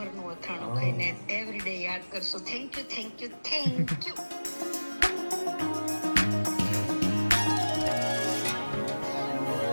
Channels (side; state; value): both; inverted; correlation -1.00